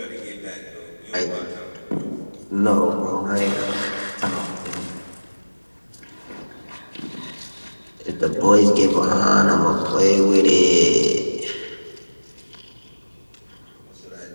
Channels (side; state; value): both; inverted; correlation -1.00